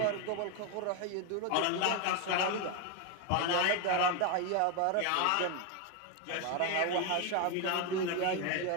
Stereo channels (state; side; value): different; both; correlation 0.02